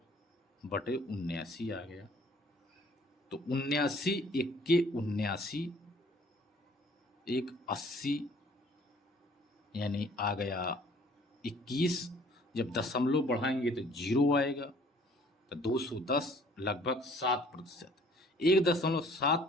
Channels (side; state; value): both; normal; correlation 0.56